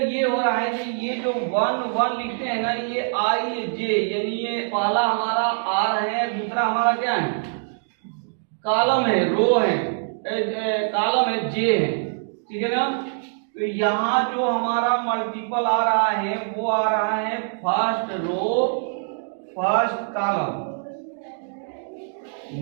ये हो रहा है कि ये जो 1 1 लिखते हैं ना, ये I J, यानी ये पहला हमारा R है, दूसरा हमारा क्या है, कॉलम है, रो है, कॉलम है, J है। ठीक है ना। तो यहाँ जो हमारा मल्टीपल आ रहा है वो आ रहा है first row first column.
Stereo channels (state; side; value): silent; left; digital silence